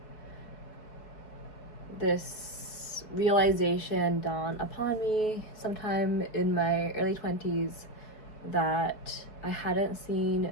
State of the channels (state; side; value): late; right; 4.7 ms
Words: this realization dawned upon me sometime in my early 20s that I hadn't